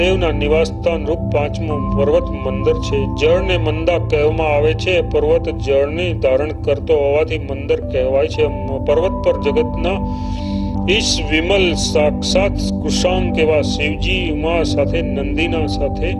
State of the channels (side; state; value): both; identical; correlation 1.00